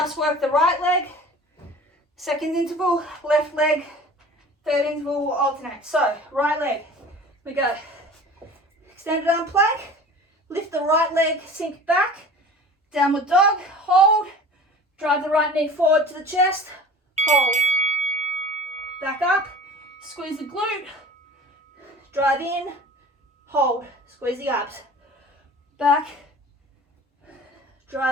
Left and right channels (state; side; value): normal; both; correlation 0.41